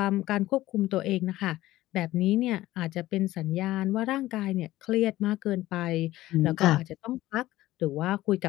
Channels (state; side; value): quieter; right; 16.1 dB